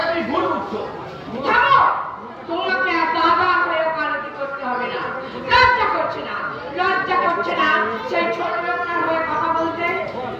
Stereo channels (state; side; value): identical; both; correlation 1.00